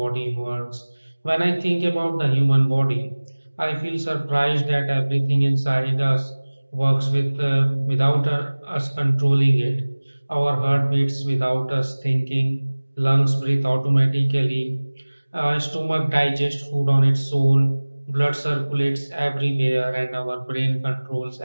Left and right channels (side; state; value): both; inverted; correlation -1.00